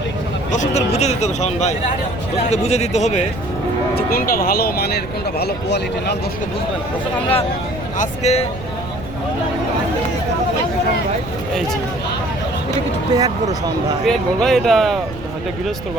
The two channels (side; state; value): right; noise; rumble, 12 dB below the sound